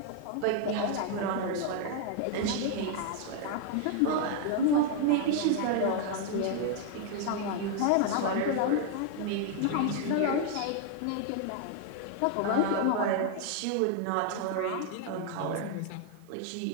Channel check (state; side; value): different; both; correlation 0.00